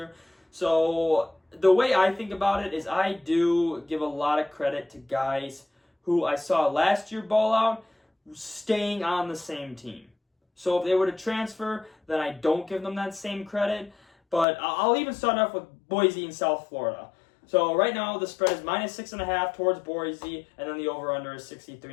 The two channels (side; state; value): right; drops out; at 14.5 s